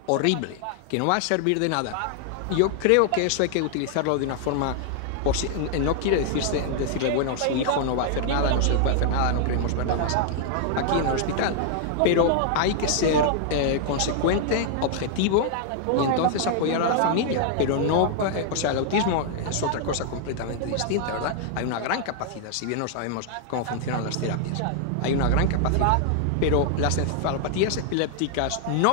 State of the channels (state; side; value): different; both; correlation 0.00